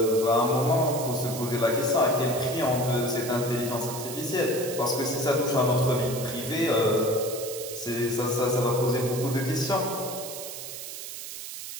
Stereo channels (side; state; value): right; noise; hiss, 9 dB below the sound